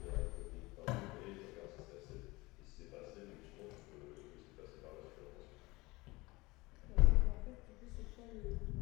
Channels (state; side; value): quieter; right; 22.4 dB